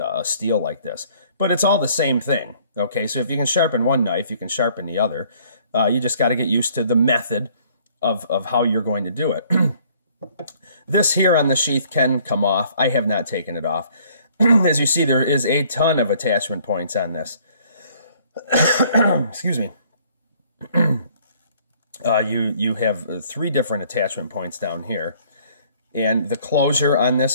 steel like this. But it's all the same thing. Okay, so if you can sharpen one knife, you can sharpen the other. You just got to get used to the method of how you're going to do it. This here on the sheath can come off. I have not taken it off. As you see, there is a ton of attachment points on this. Excuse me. You have 3 different attachment points down here, and the closure on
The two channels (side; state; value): both; inverted; correlation -0.59